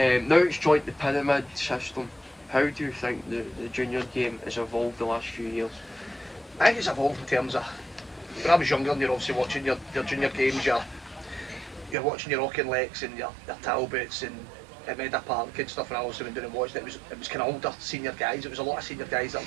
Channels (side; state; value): left; drops out; at 12.0 s